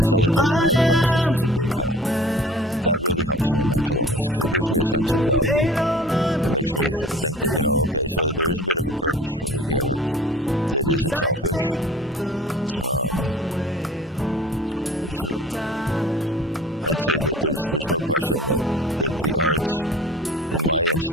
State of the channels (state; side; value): normal; both; correlation 0.45